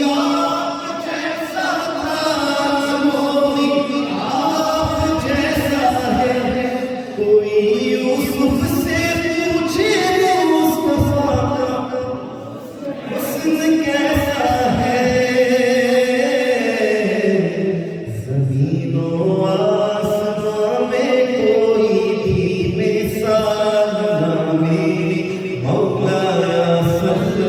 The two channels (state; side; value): identical; both; correlation 1.00